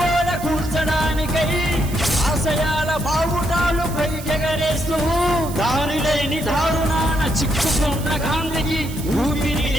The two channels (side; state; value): right; noise; hiss, 15 dB below the sound